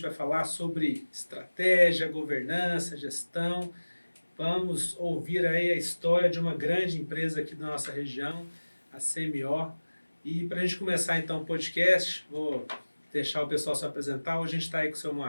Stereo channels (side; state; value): both; inverted; correlation -1.00